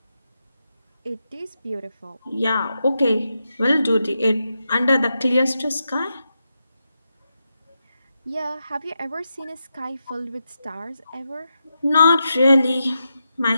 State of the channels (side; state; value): both; inverted; correlation -0.87